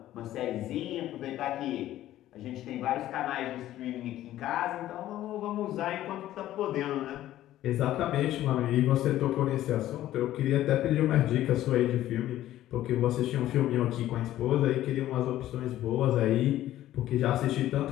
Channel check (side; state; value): right; quieter; 13.7 dB